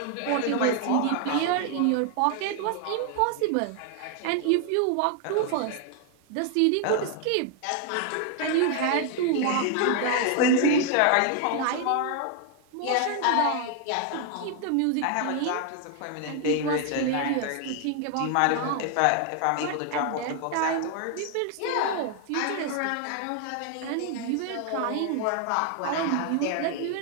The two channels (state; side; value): different; both; correlation 0.00